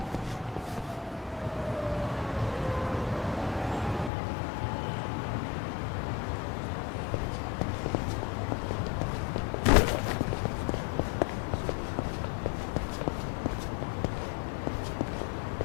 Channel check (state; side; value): drops out; right; at 4.1 s